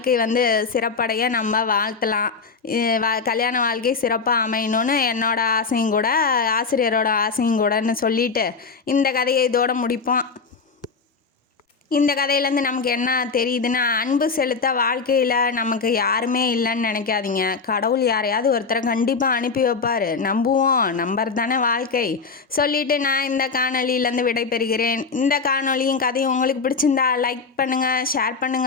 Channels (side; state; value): right; quieter; 4.8 dB